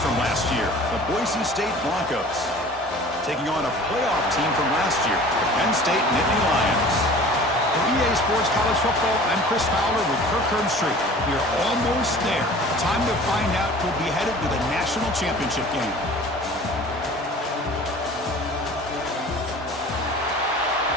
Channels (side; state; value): both; normal; correlation 0.44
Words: from last year, the Boise State Broncos, taking on a playoff team from last year, the Penn State Nittany Lions. For EA Sports College Football, I'm Chris Fowler with Kirk Herbstreit. We are almost there. Time to find out who'll be headed to the national championship game.